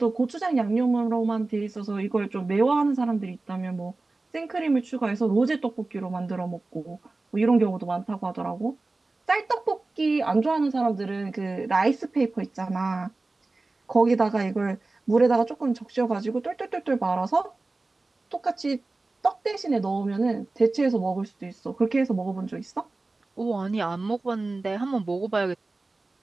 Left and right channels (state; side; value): quieter; left; 3.3 dB